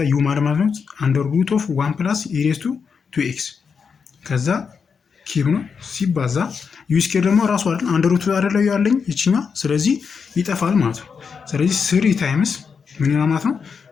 ዩ ማለት ነው አንደር ሩት ኦፍ 1 ፕላስ ኢሬስ ቱ 2x ከዛ ኪብ ነው ሲባዛ ዩ ስኩዌር ደግሞ ራሱ አይደል አንደር ሩት አይደለው ያለኝ እችኛዋ። ስለዚህ ይጠፋል ማለት ነው። ስለዚህ 3 ታይምስ ምን ይሆናል ማለት ነው?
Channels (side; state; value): right; quieter; 5.9 dB